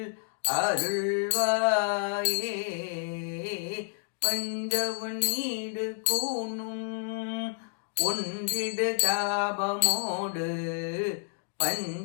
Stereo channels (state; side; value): silent; right; digital silence